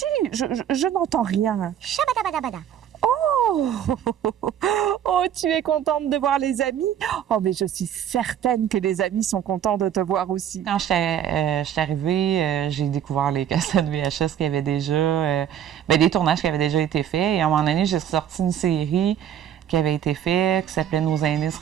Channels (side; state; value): left; quieter; 9.9 dB